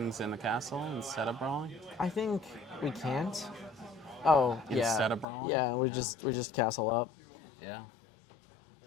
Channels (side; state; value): right; drops out; at 5.2 s